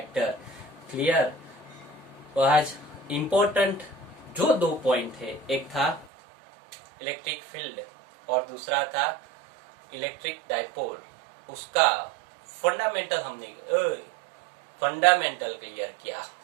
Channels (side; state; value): left; drops out; at 6.1 s